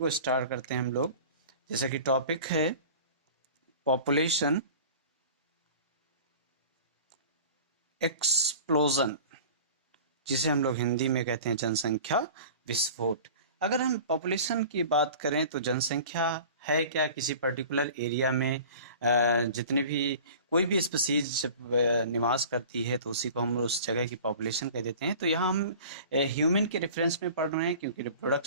स्टार्ट करते हैं हम लोग। जैसे कि टॉपिक है पॉपुलेशन एक्सप्लोजन, जिसे हम लोग हिंदी में कहते हैं जनसंख्या विस्फोट। अगर हम पॉपुलेशन की बात करें तो जनसंख्या है क्या, किसी पर्टिकुलर एरिया में जितने भी कोई भी स्पीसीज जब निवास करती है तो उसी को हम उस जगह की पॉपुलेशन कह देते हैं। तो यहाँ हम ह्यूमन के रेफरेंस में पढ़ रहे हैं, क्योंकि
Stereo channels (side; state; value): both; inverted; correlation -0.41